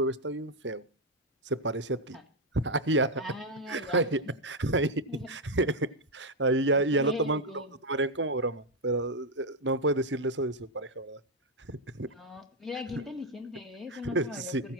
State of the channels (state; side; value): normal; both; correlation 0.02